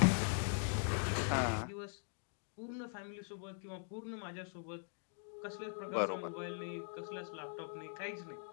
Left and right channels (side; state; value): right; silent; digital silence